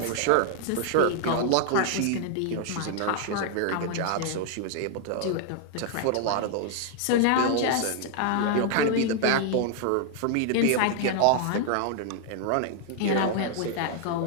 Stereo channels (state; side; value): different; both; correlation 0.00